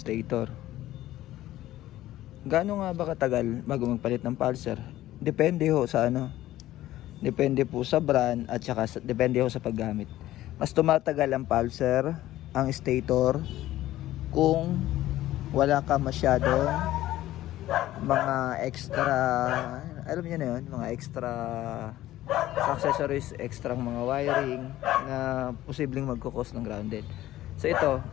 Gaano nga ba katagal bago magpalit ng pulsar? Depende ho sa ano. Depende po sa brand at saka depende ho sa paggamit. Mas tumatagal ang pulsar, ang stator kung wala ka masyadong mga extra, alam niyo na yun, mga extra accessories, extra mga wiring na posibleng magkukos ng grounded. So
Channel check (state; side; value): quieter; right; 14.7 dB